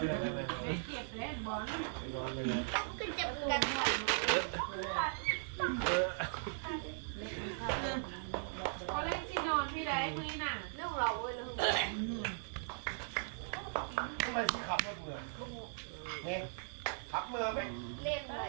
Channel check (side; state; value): left; silent; 52 dB below the other